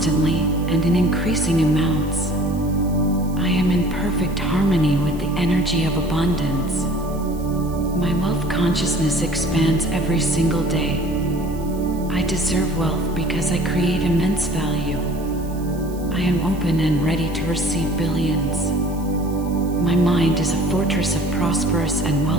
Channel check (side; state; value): right; noise; hiss, 22 dB below the sound